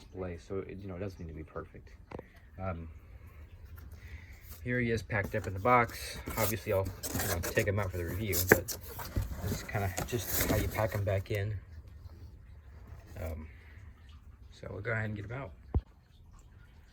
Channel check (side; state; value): both; identical; correlation 1.00